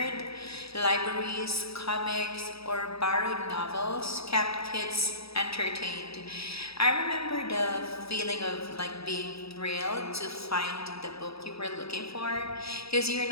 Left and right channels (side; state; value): right; late; 0.77 ms